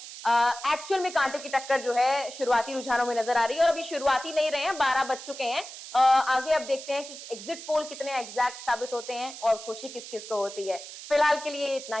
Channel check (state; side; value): noise; right; hiss, 12 dB below the sound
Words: एक्चुअल में कांटे की टक्कर जो है शुरुआती रुझानों में नजर आ रही है, और अभी शुरुआती नहीं रहे हैं, 12 बज चुके हैं। आगे अब देखते हैं कि एग्जिट पोल कितने एग्जैक्ट साबित होते हैं और खुशी किस किस को होती है। फिलहाल के लिए इतना